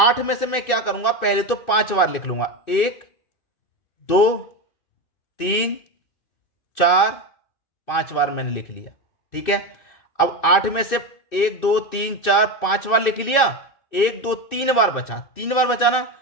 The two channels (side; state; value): right; late; 2.6 ms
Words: में से मैं क्या करूंगा, पहले तो 5 बार लिख लूंगा। 1 2 3 4 5 बार मैंने लिख लिया। ठीक है, अब 8 में से 1 2 3 4 5 बार लिख लिया, 1 2 3 बार बचा, 3 बार बचा ना,